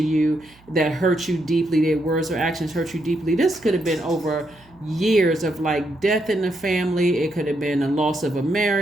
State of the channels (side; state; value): right; noise; hum, 28 dB below the sound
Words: that hurt you deeply. Their words or actions hurt you deeply. This could have been over years of like death in the family. It could have been a loss of a